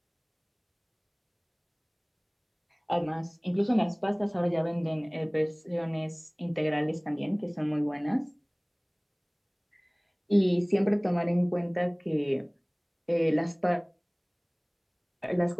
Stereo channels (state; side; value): identical; both; correlation 1.00